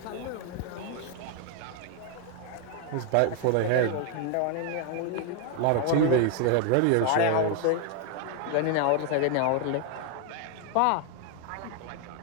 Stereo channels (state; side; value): different; both; correlation 0.00